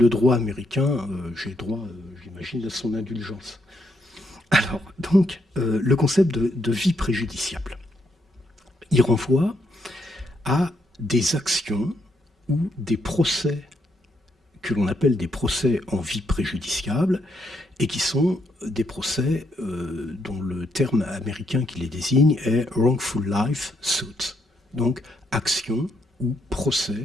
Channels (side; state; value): both; normal; correlation 0.76